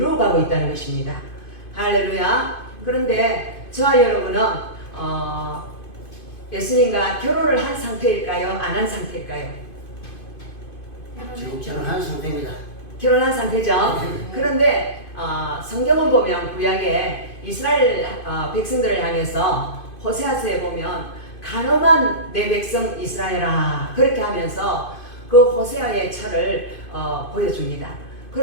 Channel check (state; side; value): late; right; 2.5 ms